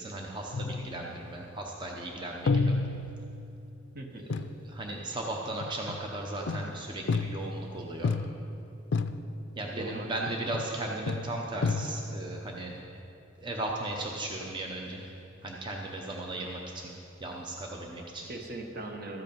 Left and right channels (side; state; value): both; normal; correlation 0.51